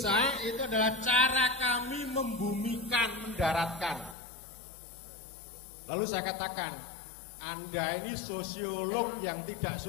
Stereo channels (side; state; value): right; drops out; at 4.2 s